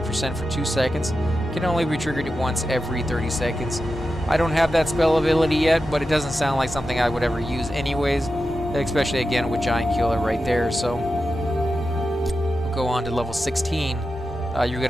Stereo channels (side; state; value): both; normal; correlation 0.91